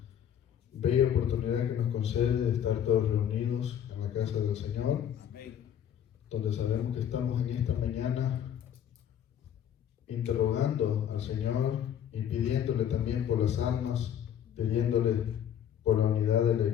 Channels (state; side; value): quieter; right; 9.5 dB